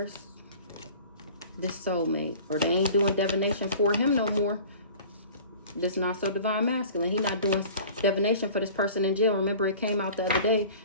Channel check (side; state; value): both; inverted; correlation -0.43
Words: This soulmate. Or they ain't doing divination for him no more. This not so divine masculine. He not doing divination for this person in jail. Remember, it came out the other day